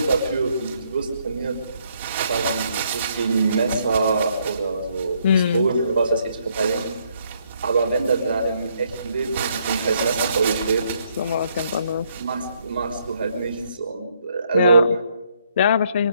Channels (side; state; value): both; inverted; correlation -0.71